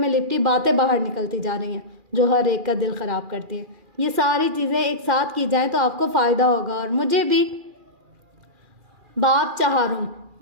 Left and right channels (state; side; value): late; left; 2.4 ms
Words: लिपटी बातें बाहर निकलती जा रही हैं जो हर एक का दिल ख़राब करती हैं। ये सारी चीज़ें एक साथ की जाएं तो आपको फ़ायदा होगा और मुझे भी। बाप चहारों,